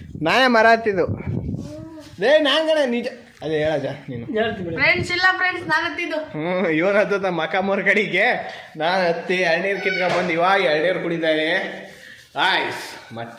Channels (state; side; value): identical; both; correlation 1.00